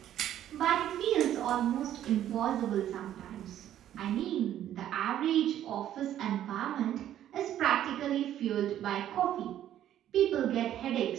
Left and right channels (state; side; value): quieter; left; 11.5 dB